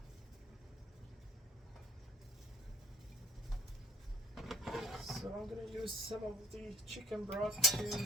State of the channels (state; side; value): normal; both; correlation 0.51